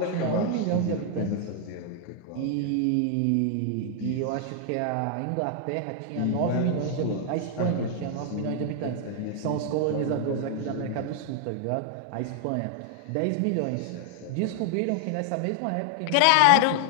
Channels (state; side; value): different; both; correlation 0.00